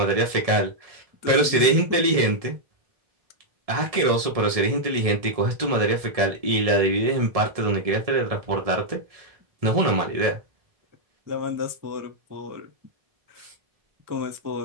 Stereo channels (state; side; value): late; left; 1.7 ms